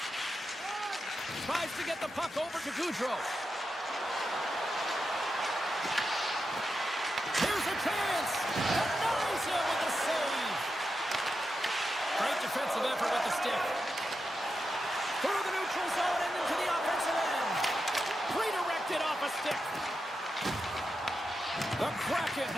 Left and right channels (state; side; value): normal; both; correlation 0.88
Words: Tries to get the puck over to Gaudreau. Here's a chance. Denies him with the save. Great defensive effort with the stick. Through the neutral zone and into the offensive end. Redirected off a stick. The Kraken